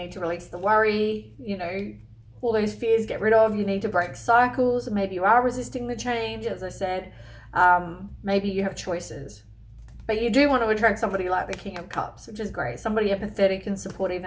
to release the worry, you know, all those fears, get rid of. You need to break cycles. Maybe you are resisting the change, as I said. Maybe you have choices, but you do want to attract somebody like the King of Cups, which is great. Somebody empathetic and supportive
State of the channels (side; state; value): both; identical; correlation 1.00